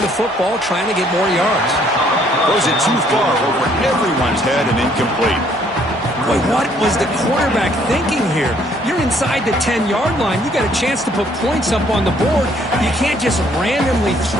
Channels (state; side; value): normal; both; correlation 0.64